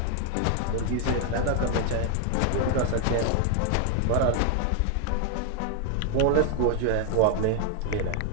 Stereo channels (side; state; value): both; different; correlation 0.00